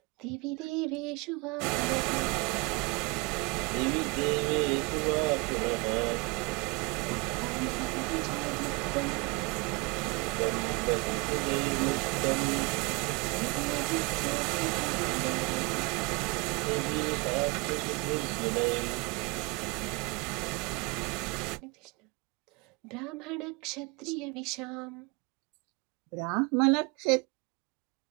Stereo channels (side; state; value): left; quieter; 27.7 dB